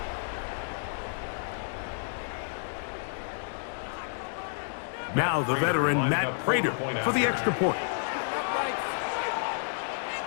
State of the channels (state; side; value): silent; right; digital silence